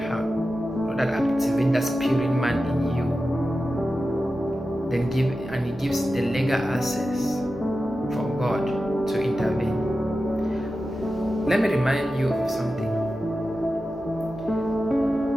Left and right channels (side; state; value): both; normal; correlation 0.92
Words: heart. Not that activate that spirit man in you. Then it gives the legal access for God to intervene. Let me remind you of something.